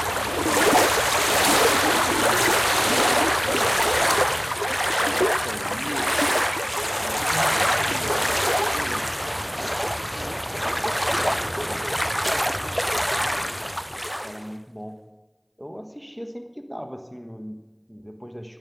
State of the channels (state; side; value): identical; both; correlation 1.00